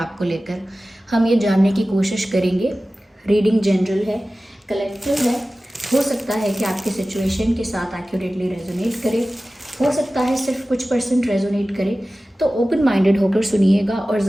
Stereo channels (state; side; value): normal; both; correlation 0.96